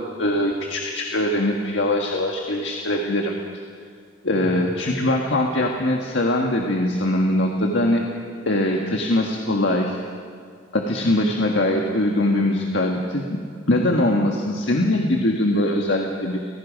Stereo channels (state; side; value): normal; both; correlation 0.40